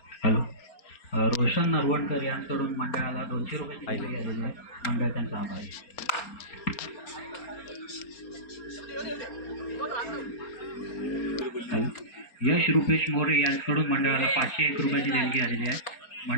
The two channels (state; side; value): late; right; 4.3 ms